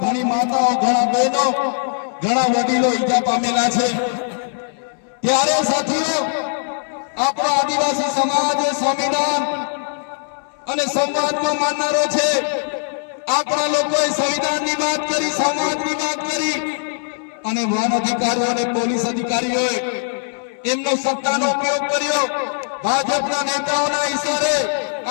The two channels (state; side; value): silent; right; 64 dB below the other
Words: માતાઓ, ઘણા બહેનો, ઘણા વડીલો ઈજા પામેલા છે. ત્યારે સાથીઓ, આપણો આદિવાસી સમાજ સંવિધાન અને સંવાદમાં માનનારો છે. આપણા લોકોએ સંવિધાનની વાત કરી, સમાજની વાત કરી, અને વન અધિકારીઓ અને પોલીસ અધિકારીઓએ એમનો સત્તાનો ઉપયોગ કર્યો. ભાજપના નેતાઓના ઇશારે